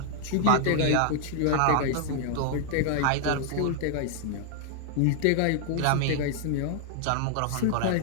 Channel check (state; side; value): different; both; correlation 0.00